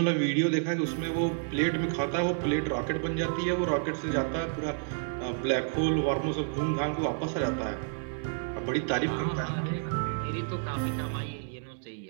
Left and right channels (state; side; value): silent; left; digital silence